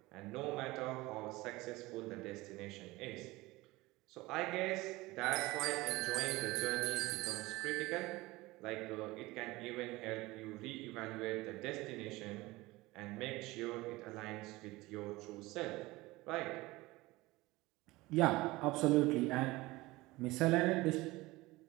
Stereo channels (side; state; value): left; quieter; 20.4 dB